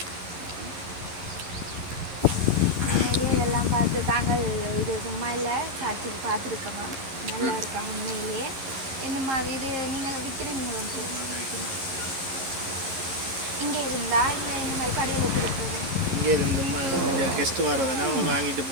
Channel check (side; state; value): left; late; 11 ms